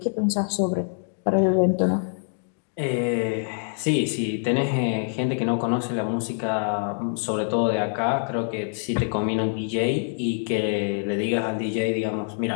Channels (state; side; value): silent; right; digital silence